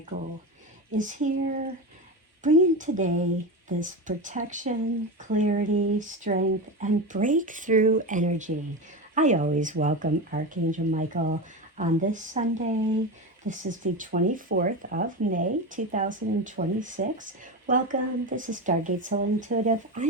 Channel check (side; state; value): both; normal; correlation 0.20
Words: is here bringing today this protection, clarity, strength, and breakthrough energy. I always welcome Archangel Michael on this Sunday. This is the 24th of May, 2026. Welcome. This is Stargate Soul Intuitive.